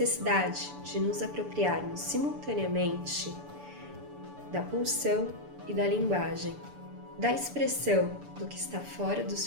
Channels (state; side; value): late; left; 6.9 ms